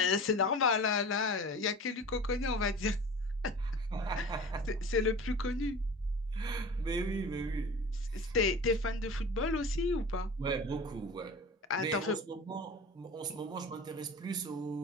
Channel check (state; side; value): normal; both; correlation 0.37